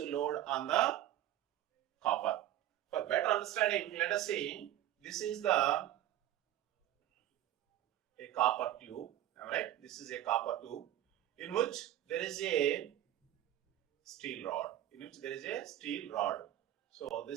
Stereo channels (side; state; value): left; quieter; 12.7 dB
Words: load on the copper. For better understanding, let us see, this is a copper tube, right? This is a copper tube in which there is a steel rod. So